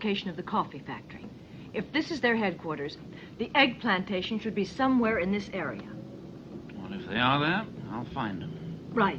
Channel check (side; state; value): both; identical; correlation 1.00